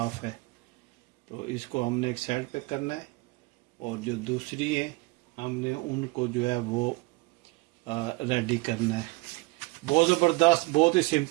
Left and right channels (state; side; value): quieter; left; 24.5 dB